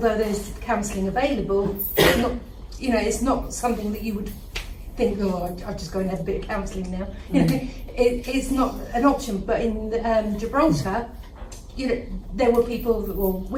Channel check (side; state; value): both; identical; correlation 1.00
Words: there's counselling available, it's not something that you would think, I'll just go and have a bit of counselling now. It's not an option. But in Gibraltar, there were people, or